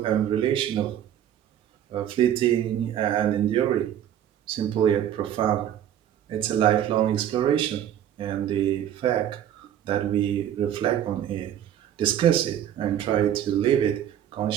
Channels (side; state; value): left; quieter; 10.6 dB